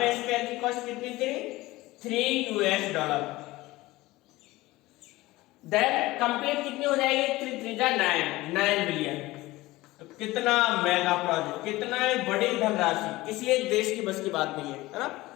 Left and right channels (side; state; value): right; quieter; 18.9 dB